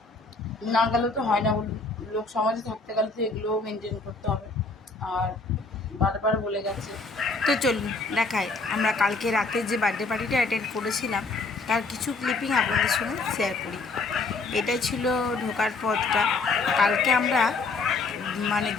না গেলেও তো হয় না, লোক সমাজে থাকতে গেলে তো এগুলোও মেনটেন করতে হবে। আর বারবার বলে গেছে। তো চলুন দেখাই, আমরা কালকে রাতে যে বার্থডে পার্টিটা অ্যাটেন্ড করেছিলাম তার কিছু ক্লিপিং আপনাদের সঙ্গে শেয়ার করি। এটাই ছিল ঢোকার পথটা। কালকে আমরা মানে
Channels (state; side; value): quieter; right; 3.8 dB